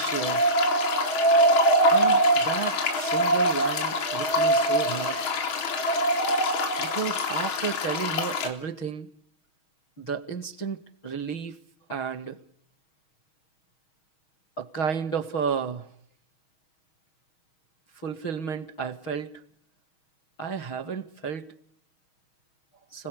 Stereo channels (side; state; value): right; late; 6.3 ms